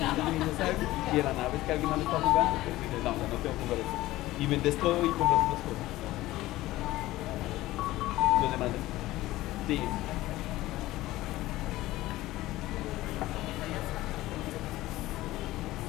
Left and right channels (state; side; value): quieter; right; 16.9 dB